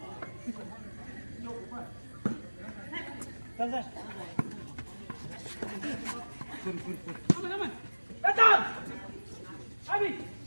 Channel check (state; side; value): inverted; both; correlation -1.00